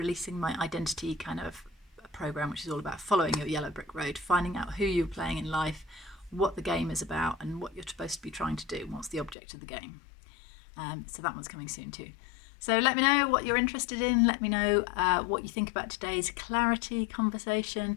my identity kind of program, which is all about following your yellow brick road, finding out who you're playing in life, what the game is about, and what you're supposed to be trying to do, and what's the object of the game. So that one's coming soon too. So let me know what you're interested in. Let me know what you think about today's clarity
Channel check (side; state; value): right; drops out; at 9.3 s